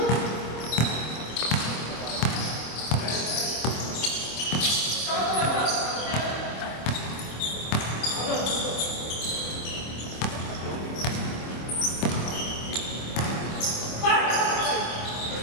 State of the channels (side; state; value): right; late; 26 ms